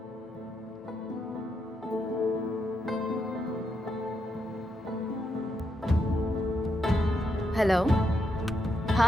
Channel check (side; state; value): both; normal; correlation 0.81